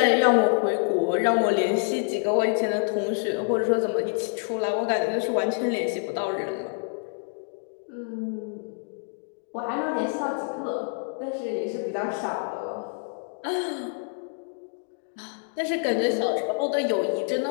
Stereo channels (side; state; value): right; silent; 57 dB below the other